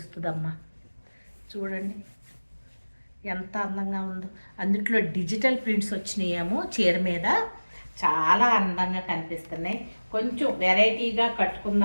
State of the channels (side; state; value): both; inverted; correlation -1.00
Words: చూడండి ఎంత అందంగా ఉందో. అందుట్లో డిజిటల్ ప్రింట్స్ వచ్చినాయేమో చీర మీద, చాలా అందంగా కనిపిస్తున్నాయి. కొంచెం వెరైటీగా